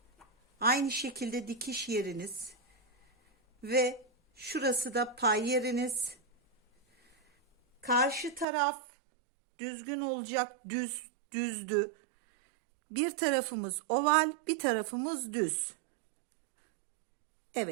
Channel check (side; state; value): left; drops out; at 8.5 s